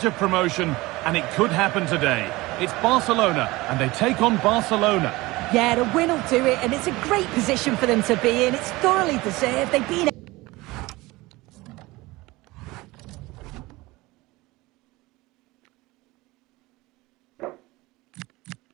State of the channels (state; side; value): quieter; left; 20.8 dB